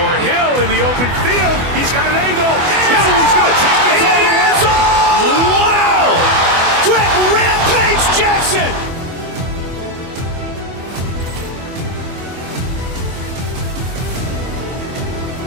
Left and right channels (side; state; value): left; late; 24 ms